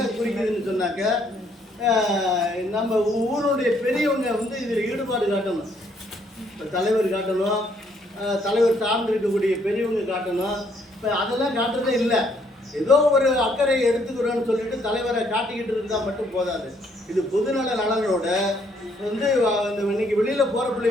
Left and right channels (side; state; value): both; normal; correlation 0.68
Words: குறிக்குதுன்னு சொன்னாக்க நம்ம ஊருடைய பெரியவங்க இதில் ஈடுபாடு காட்டணும். இப்போ தலைவர் காட்டணும், தலைவர் சார்ந்து இருக்கக்கூடிய பெரியவங்க காட்டணும். இப்போ அதெல்லாம் காட்டுறதே இல்லை. ஏதோ ஒரு அக்கறை எடுத்துக்கிறோன்னு சொல்லிட்டு தலைவரை காட்டிக்கிட்டு இருந்தால் மட்டும் போதாது. இது பொதுநல நலனோட இன்னைக்கு வெளியில் போகிற